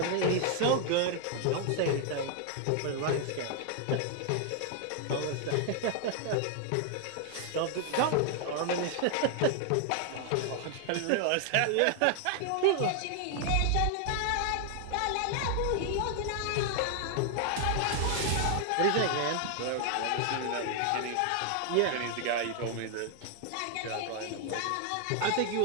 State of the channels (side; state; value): both; different; correlation 0.00